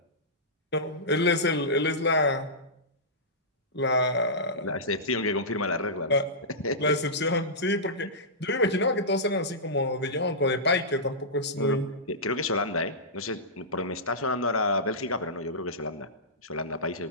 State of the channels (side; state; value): both; normal; correlation -0.16